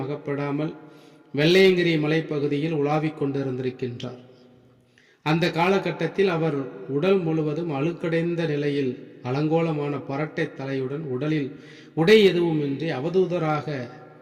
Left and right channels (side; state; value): both; identical; correlation 1.00